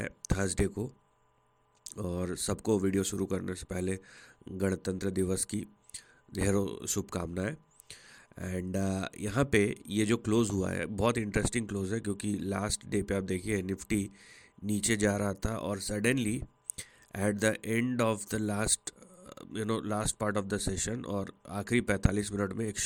थर्सडे को, और सबको वीडियो शुरू करने से पहले गणतंत्र दिवस की ढेरों शुभकामनाएं। एंड यहाँ पे ये जो क्लोज हुआ है बहुत इंटरेस्टिंग क्लोज है, क्योंकि लास्ट डे पे आप देखिए निफ्टी नीचे जा रहा था और suddenly at the end of the last part of the session और आखिरी 45 मिनट में एक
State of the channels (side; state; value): both; identical; correlation 1.00